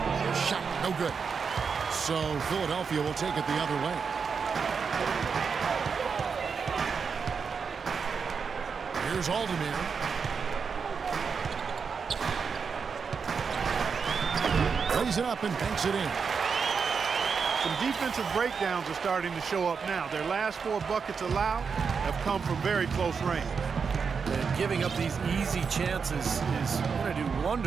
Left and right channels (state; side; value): quieter; left; 5.8 dB